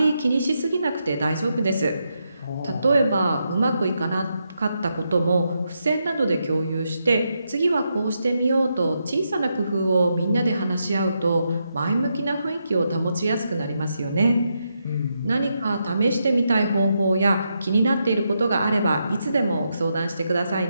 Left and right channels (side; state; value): both; inverted; correlation -0.83